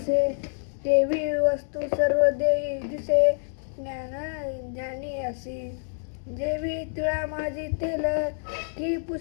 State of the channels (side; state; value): right; silent; digital silence